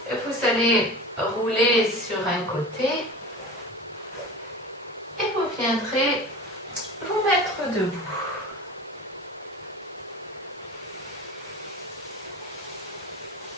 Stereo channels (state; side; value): normal; both; correlation 0.34